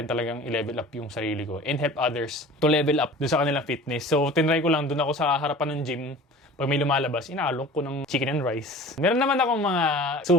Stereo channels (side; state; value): both; normal; correlation 0.41